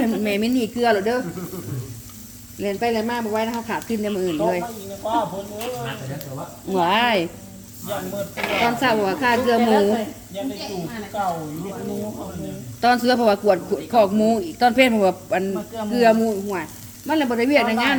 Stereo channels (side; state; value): both; identical; correlation 1.00